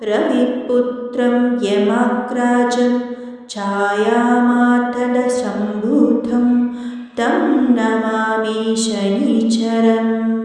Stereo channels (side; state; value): both; identical; correlation 1.00